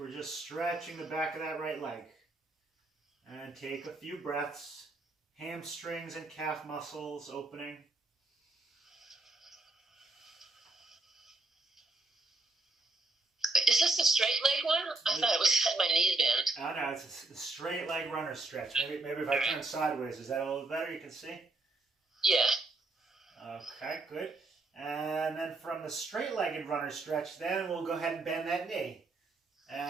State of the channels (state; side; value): quieter; left; 3.1 dB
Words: just stretching the back of that right leg. And take a few breaths. Hamstrings and calf muscles opening. Is this the straight leg one? I thought it was had my knee bent. Oh no, it's a straight leg runner stretch. Maybe if I turn sideways, is that a little better? You can see? Yeah. Okay, good. And then from the straight-legged runner stretch, then we'll go ahead and bend that knee.